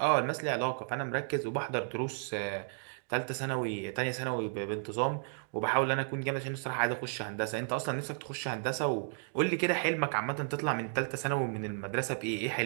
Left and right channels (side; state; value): left; silent; 56 dB below the other